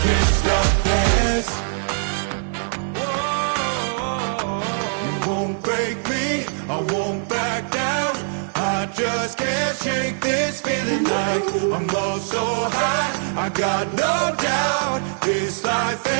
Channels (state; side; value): silent; left; 64 dB below the other